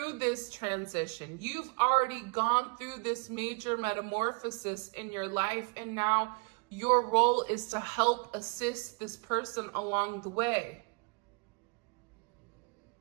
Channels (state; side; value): quieter; left; 31.9 dB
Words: this transition. You've already gone through this major metamorphosis in your life. And now your role is to help assist this person along the way.